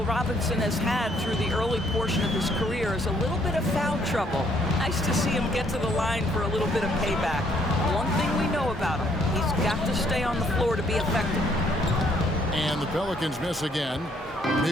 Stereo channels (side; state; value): both; normal; correlation 0.67